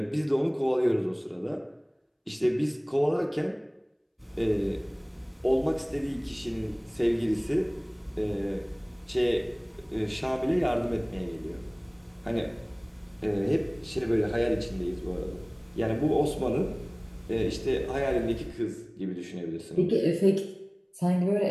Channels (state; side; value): identical; both; correlation 1.00